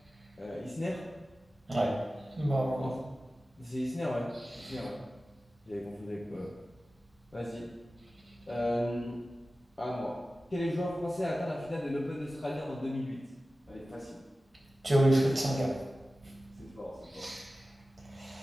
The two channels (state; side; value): normal; both; correlation 0.95